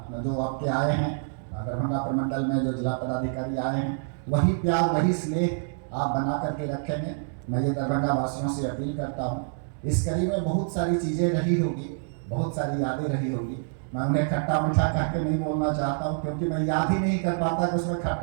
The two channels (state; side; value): silent; left; digital silence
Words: आपके आए हैं दरभंगा प्रमंडल में, जो जिला पदाधिकारी आए हैं, वही प्यार, वही स्नेह आप बना करके रखेंगे। मैं ये दरभंगा वासियों से अपील करता हूँ। इस कड़ी में बहुत सारी चीज़ें रही होगी, बहुत सारी यादें रही होगी। मैं उन्हें खट्टा मीठा कह के नहीं बोलना चाहता हूँ, क्योंकि मैं याद ही नहीं कर पाता कि उसमें